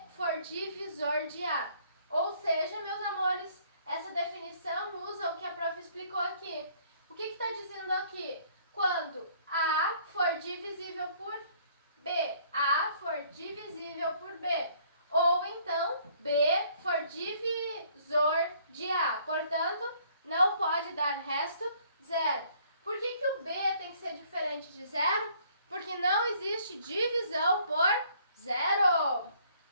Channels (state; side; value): inverted; both; correlation -0.61